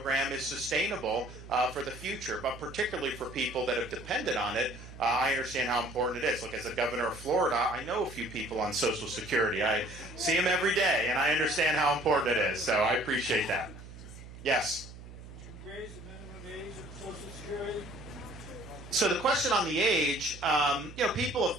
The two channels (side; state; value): right; noise; hum, 15 dB below the sound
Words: is sustainable for the future, but particularly for people that have depended on it. I understand how important it is. Look, as a governor of Florida, I know a few people on Social Security. I see them every day, and I understand how important it is, so I appreciate that. Yes? Would you raise the minimum age of Social Security? So the question on the age, people have